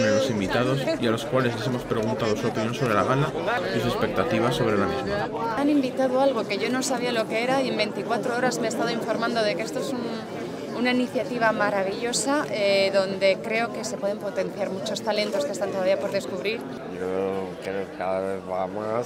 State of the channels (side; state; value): both; identical; correlation 1.00